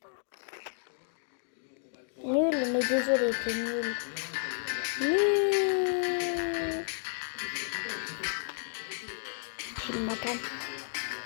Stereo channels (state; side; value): silent; right; digital silence